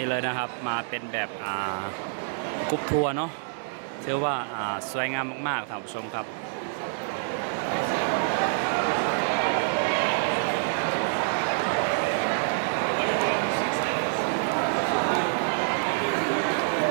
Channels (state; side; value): silent; left; digital silence